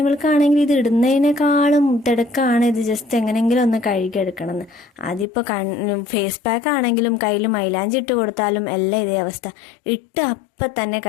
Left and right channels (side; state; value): right; drops out; at 5.2 s